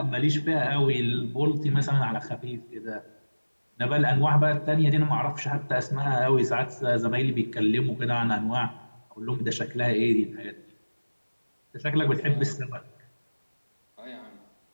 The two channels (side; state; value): both; inverted; correlation -1.00